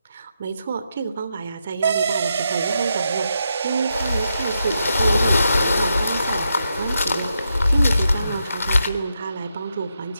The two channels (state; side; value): inverted; both; correlation -0.83